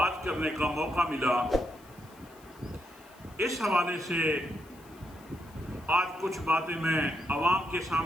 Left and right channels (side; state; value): left; noise; hiss, 26 dB below the sound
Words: کرنے کا موقع ملا۔ اس حوالے سے آج کچھ باتیں میں عوام کے